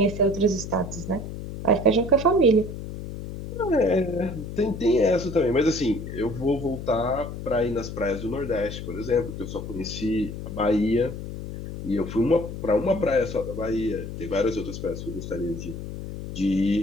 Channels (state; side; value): noise; left; hum, 8 dB below the sound